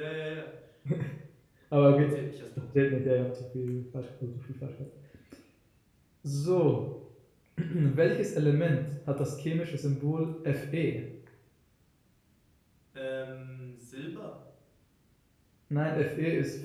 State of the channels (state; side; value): identical; both; correlation 1.00